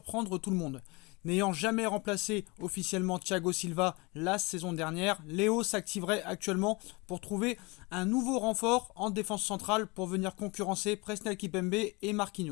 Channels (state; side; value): quieter; right; 26.4 dB